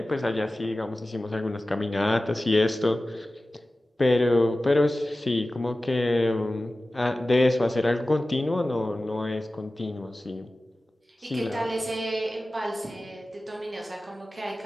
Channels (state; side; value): normal; both; correlation 0.96